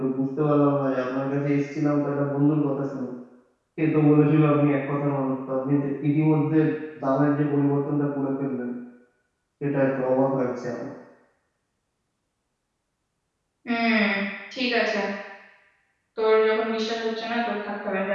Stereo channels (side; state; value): both; identical; correlation 1.00